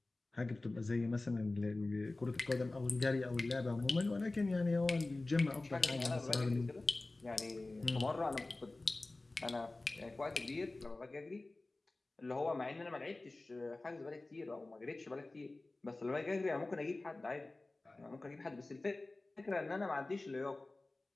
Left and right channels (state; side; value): quieter; right; 3.0 dB